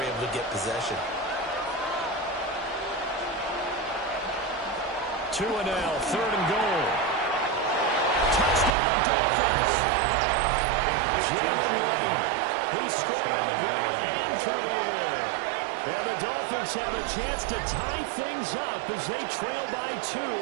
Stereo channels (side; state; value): left; drops out; at 8.8 s